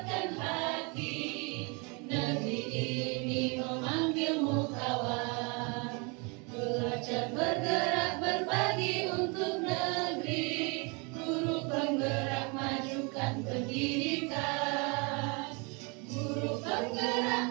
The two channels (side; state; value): left; quieter; 31.5 dB